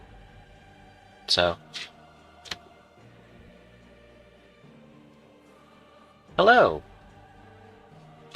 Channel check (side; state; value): both; identical; correlation 1.00